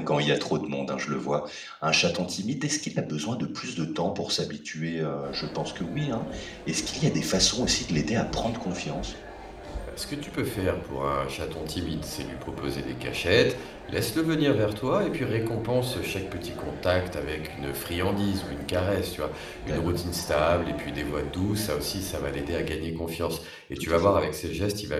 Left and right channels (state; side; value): identical; both; correlation 1.00